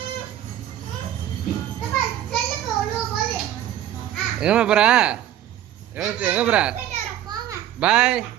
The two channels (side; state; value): left; quieter; 11.9 dB